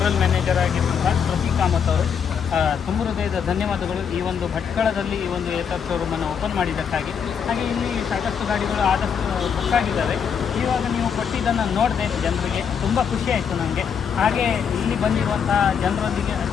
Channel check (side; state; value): right; quieter; 7.2 dB